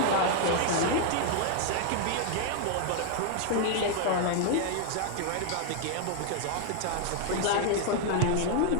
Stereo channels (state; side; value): different; both; correlation 0.00